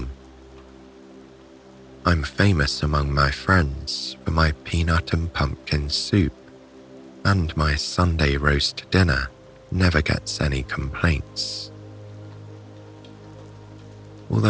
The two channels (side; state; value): both; identical; correlation 1.00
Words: I'm famous among my friends for my peanut and pumpkin soup, and my Sunday roast dinner never gets any complaints.